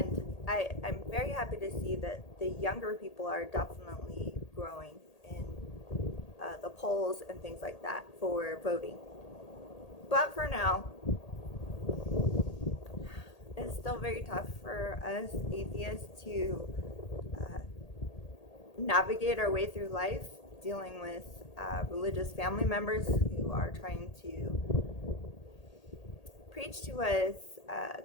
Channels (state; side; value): late; right; 1.8 ms